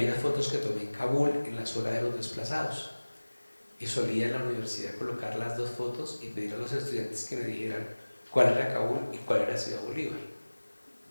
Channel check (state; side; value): inverted; both; correlation -1.00